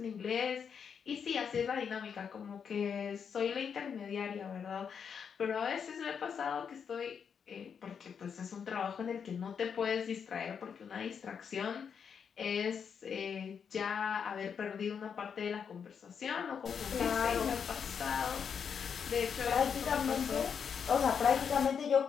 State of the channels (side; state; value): right; quieter; 6.9 dB